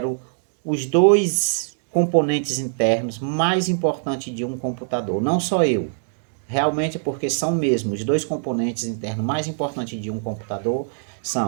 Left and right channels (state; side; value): silent; left; digital silence